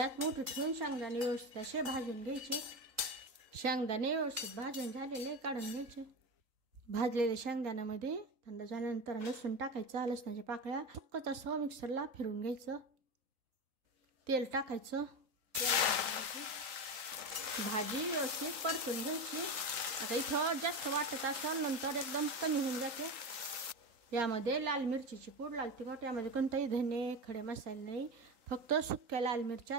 मोठी ठेवून शेंगदाणे व्यवस्थित असे भाजून घ्यायचे. शेंगदाणे व्यवस्थित भाजून झालेले काढून घ्यायचे. भाजलेल्या शेंगदाण्यामध्ये थंड झाल्यानंतर लसूण टाकायचा. लसणाच्या पाकळ्या सुक्कच असं मिक्सरला फिरून घ्यायचं. तेल टाकायचं. भाजी व्यवस्थित परतून घ्यायची. आता इथं जास्त वाटत असेल नंतर एकदम कमी होऊन जाते. यामध्ये लाल मिरचीची पूड, लाल तिखट, यामध्ये कोणताही धने खडे मसाले नाही, फक्त सुक्या लाल मिरच्या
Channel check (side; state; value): left; late; 3.8 ms